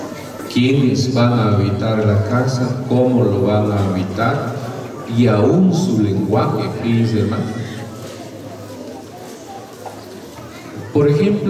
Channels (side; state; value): both; identical; correlation 1.00